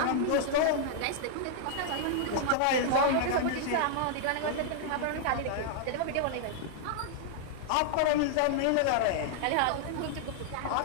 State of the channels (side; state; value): both; different; correlation -0.01